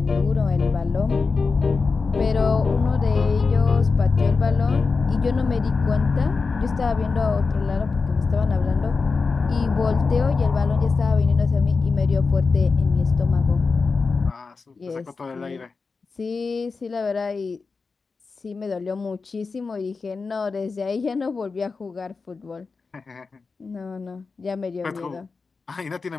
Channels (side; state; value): right; quieter; 4.5 dB